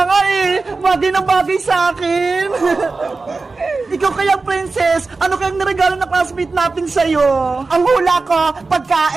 nga eh! Bagay na bagay sa akin! Ikaw kaya, Princess, ano kayang niregalo na classmate natin sa'yo? Ang hula ko,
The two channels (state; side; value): quieter; left; 3.9 dB